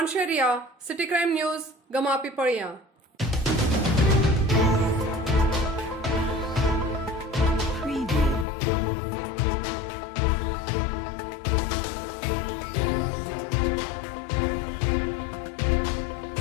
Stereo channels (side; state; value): right; drops out; at 8.5 s